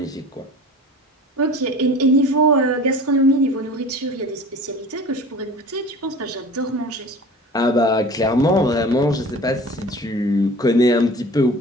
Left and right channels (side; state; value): both; normal; correlation 0.40